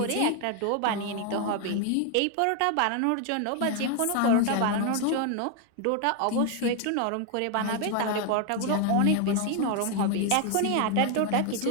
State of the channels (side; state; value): both; different; correlation 0.01